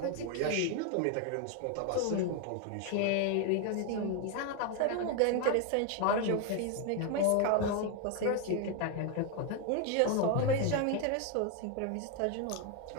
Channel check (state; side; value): different; both; correlation 0.01